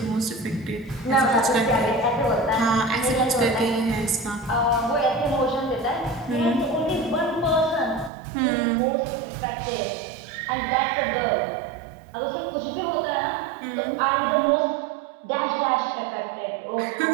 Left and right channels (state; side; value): drops out; left; at 8.1 s